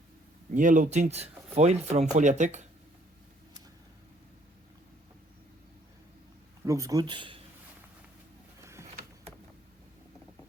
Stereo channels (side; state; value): both; normal; correlation 0.63